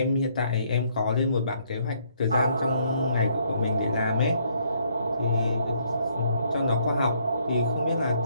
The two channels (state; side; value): inverted; both; correlation -0.69